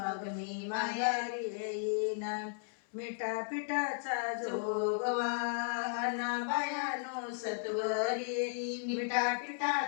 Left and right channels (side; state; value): right; silent; 54 dB below the other